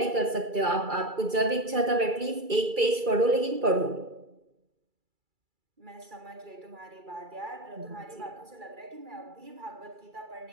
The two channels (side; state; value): left; late; 2.3 ms